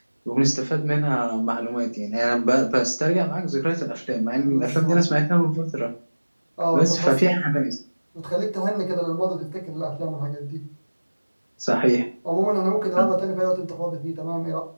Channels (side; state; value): both; inverted; correlation -1.00